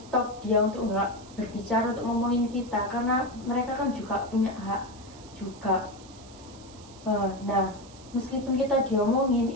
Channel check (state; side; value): noise; right; hiss, 21 dB below the sound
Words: dia untuk nggak berbicara, untuk ngomongin kita, karena mereka kan juga punya hak juga. Nah meskipun kita diomongin